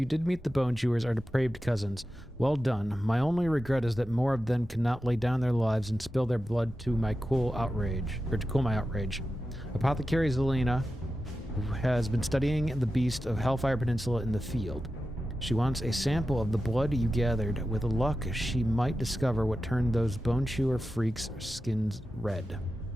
did meet the Bone Chewers, our depraved cousins. Well done. My only regret is that more of them cannot lay down their lives and spill their blood to my cool outrage, or to cool my outrage. Apothecary Zelina has been studying the beast of Hellfire Peninsula in the field. She wants a sample of the blood you gathered. With luck, she might discover what turned those Bone Chewer freaks' skins red.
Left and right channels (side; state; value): both; normal; correlation 0.92